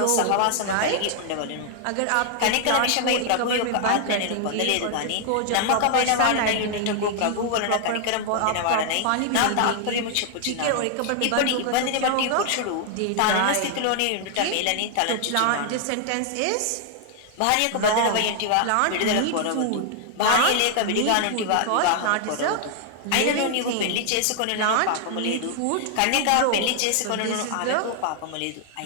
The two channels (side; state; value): both; different; correlation 0.00